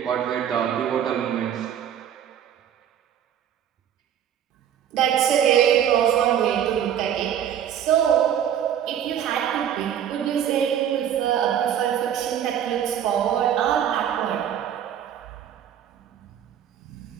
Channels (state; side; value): quieter; left; 9.6 dB